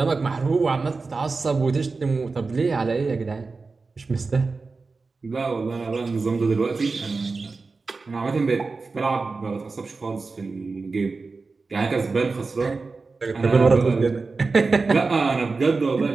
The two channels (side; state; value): left; quieter; 4.1 dB